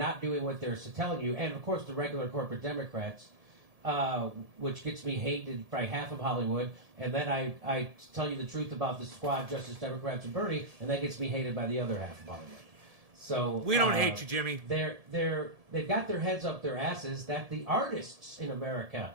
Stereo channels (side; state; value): left; late; 1.7 ms